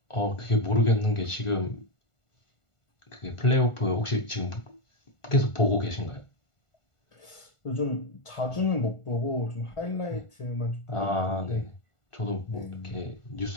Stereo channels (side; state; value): right; late; 1.4 ms